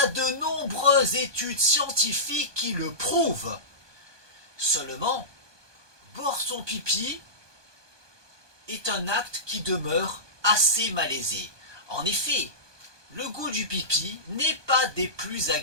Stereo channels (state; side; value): late; left; 1.2 ms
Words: a de nombreuses études scientifiques qui le prouvent. Seulement, boire son pipi est un acte qui demeure assez malaisé. En effet, le goût du pipi n'est pas des plus